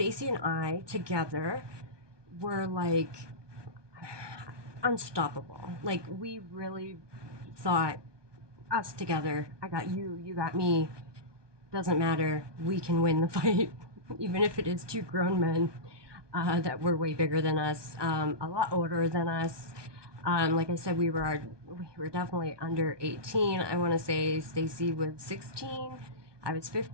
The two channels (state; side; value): late; left; 1.2 ms